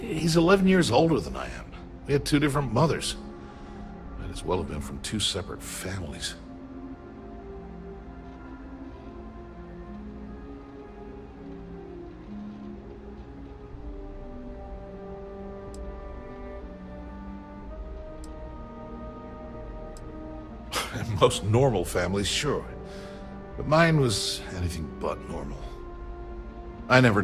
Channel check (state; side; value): identical; both; correlation 1.00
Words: 11 years older than I am. We had two different mothers. Might as well have been from two separate families. And most normal families, sure. But mine was anything but normal. I never